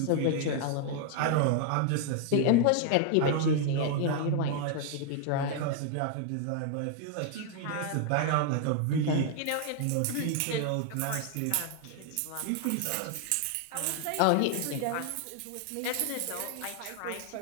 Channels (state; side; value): different; both; correlation 0.00